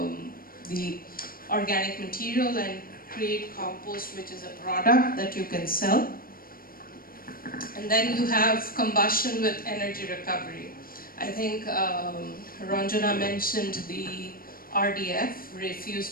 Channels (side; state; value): right; late; 0.42 ms